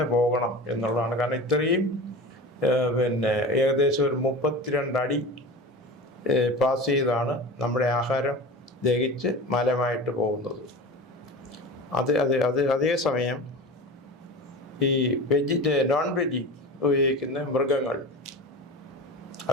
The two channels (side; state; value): both; normal; correlation 0.31